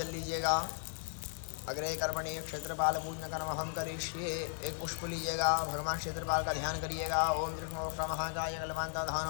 लीजिएगा। अग्रे कर्मणि क्षेत्रपाल पूज्य कर्म हम करिष्ये। एक पुष्प लीजिएगा, भगवान क्षेत्रपाल का ध्यान करिएगा। ओम कृष्ण महाकाय कलवांत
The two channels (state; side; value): silent; right; 54 dB below the other